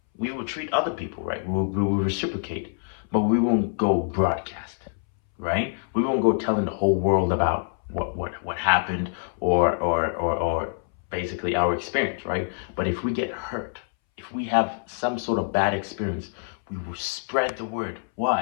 we will treat other people right. We will reciprocate, but we won't go broadcast, right? We won't go telling the whole world about what happened or basically our experience, right? But if we get hurt, if we have some sort of bad experience, we will spread the word.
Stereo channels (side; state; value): right; silent; 61 dB below the other